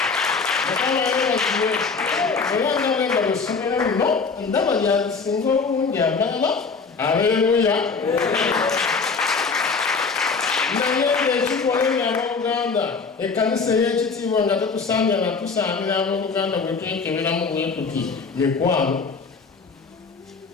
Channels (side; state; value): right; quieter; 4.9 dB